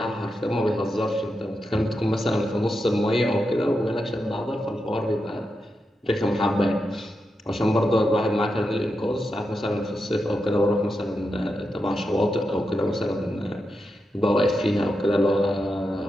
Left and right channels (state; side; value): normal; both; correlation 0.87